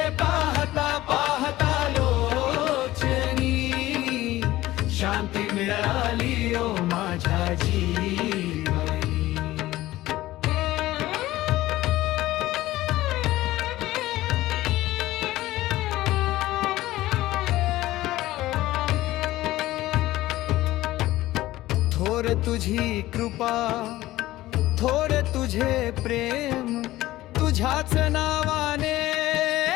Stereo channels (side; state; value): right; quieter; 16.4 dB